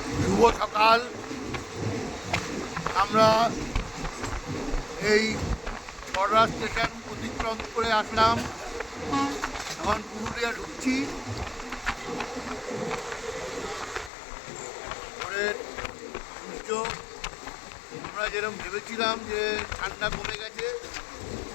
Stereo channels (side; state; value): right; drops out; at 14.1 s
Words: শুভ সকাল। আমরা এই বড়রা স্টেশন অতিক্রম করে আসলাম, এখন পুরুলিয়া ঢুকছি। পরের সূর্য আমরা যেরকম ভেবেছিলাম যে ঠান্ডা কমে গেছে,